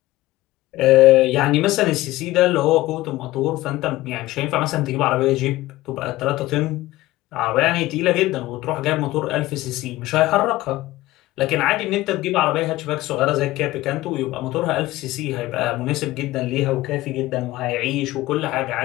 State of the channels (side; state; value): right; quieter; 17.6 dB